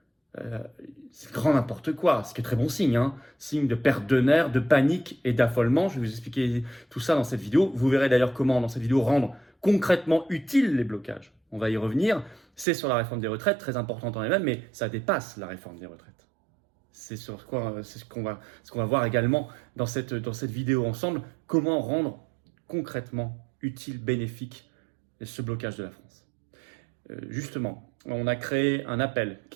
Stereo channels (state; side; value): drops out; left; at 12.7 s